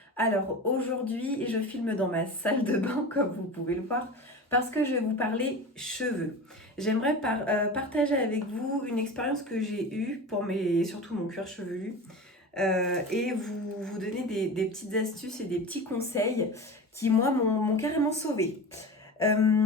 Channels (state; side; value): normal; both; correlation 0.30